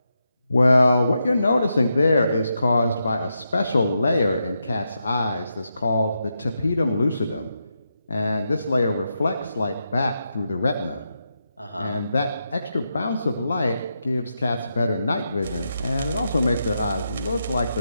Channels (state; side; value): inverted; both; correlation -0.85